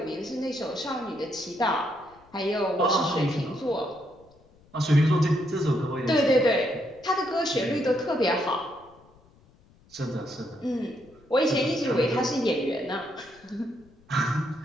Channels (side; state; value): left; noise; rumble, 29 dB below the sound